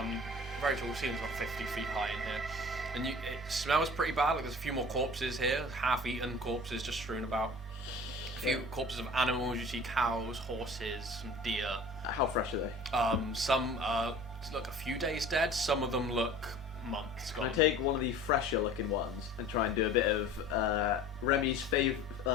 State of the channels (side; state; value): both; normal; correlation 0.43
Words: Very tall ceilings, about 50 feet high in here. And it smells pretty bad. Like there's a few more corpses here, half-eaten corpses just strewn about. A few corpses of animals. You see cows, horses, some deer. How fresh are they? Some look a few days dead. Some of them look months Can gone. I take one of the fresher looking ones and try and do a bit of Remy's famous